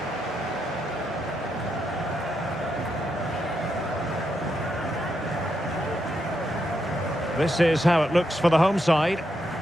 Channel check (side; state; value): both; normal; correlation 0.82